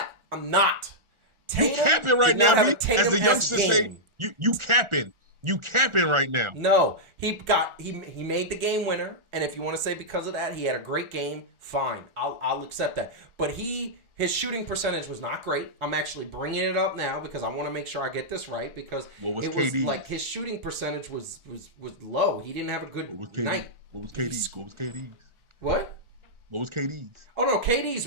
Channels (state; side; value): late; left; 1.4 ms